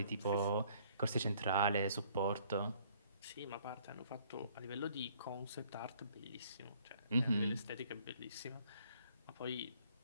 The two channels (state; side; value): inverted; both; correlation -0.62